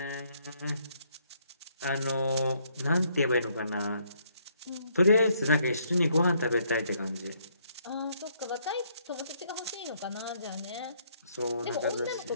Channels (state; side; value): inverted; both; correlation -0.70